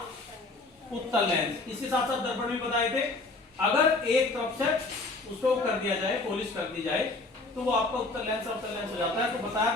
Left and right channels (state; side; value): quieter; right; 3.3 dB